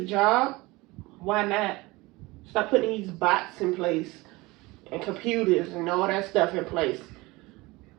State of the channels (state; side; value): quieter; left; 22.2 dB